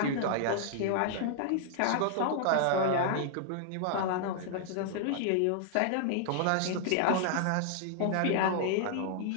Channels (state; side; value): different; both; correlation 0.00